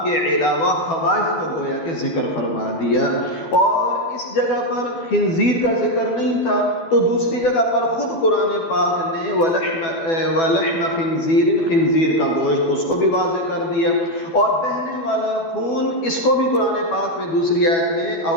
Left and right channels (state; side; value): late; right; 12 ms